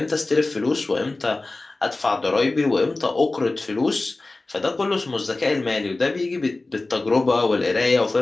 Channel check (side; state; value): right; quieter; 3.2 dB